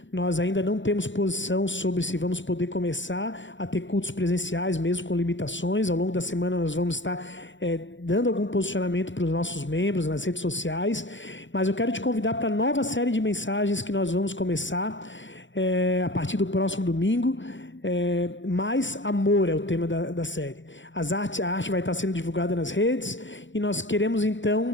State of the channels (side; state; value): right; late; 0.54 ms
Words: Nós ainda não temos posição sobre se vamos poder começar a ter cultos presenciais, mesmo com limitações. Ao longo da semana nós vamos estar dando algum posicionamento para os nossos membros nas redes sociais. Mas eu quero te convidar para a nova série de mensagens que nós vamos começar a partir do próximo domingo. Mais amor é o tema da série. A arte vai estar sendo divulgada nas redes e nós queremos